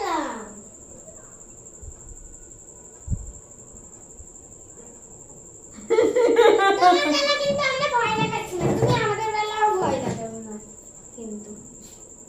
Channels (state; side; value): identical; both; correlation 1.00